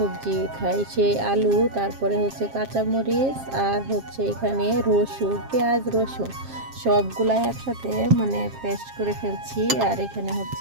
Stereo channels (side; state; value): left; late; 7.5 ms